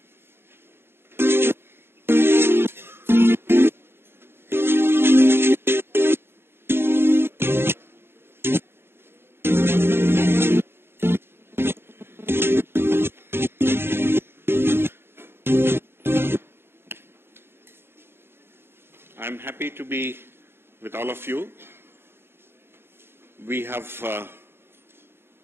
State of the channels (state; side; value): late; left; 0.11 ms